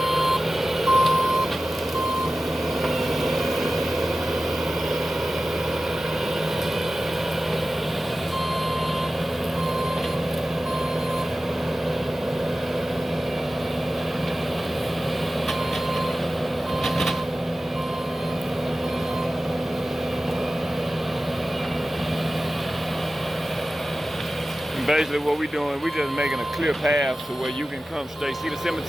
Basically what we're doing, we just making a clear path to where you can come straight. See the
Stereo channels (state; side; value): normal; both; correlation 0.95